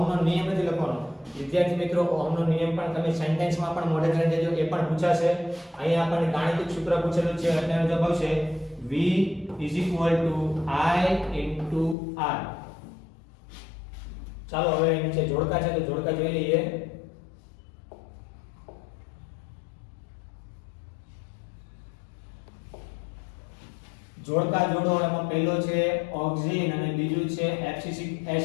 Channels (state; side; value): drops out; right; at 12.0 s